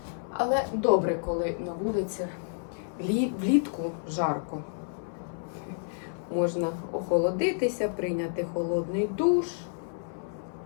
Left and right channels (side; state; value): right; silent; 58 dB below the other